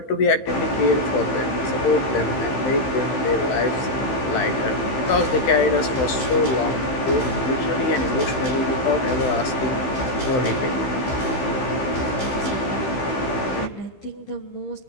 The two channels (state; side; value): late; right; 15 ms